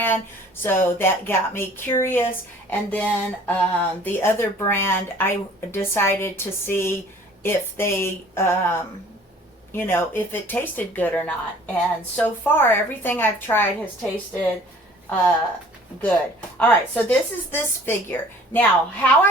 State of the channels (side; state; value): both; normal; correlation 0.52